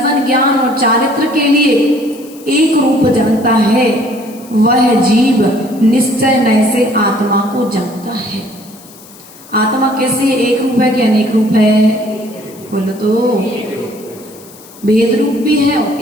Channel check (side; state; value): left; noise; hiss, 22 dB below the sound